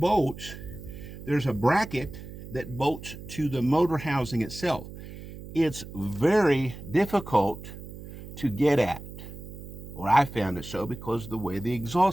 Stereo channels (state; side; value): noise; right; hum, 13 dB below the sound